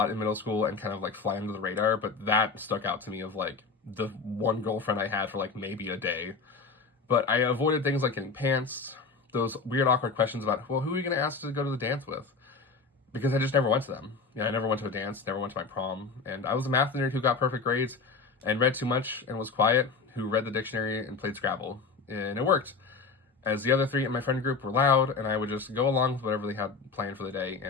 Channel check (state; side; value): quieter; right; 4.7 dB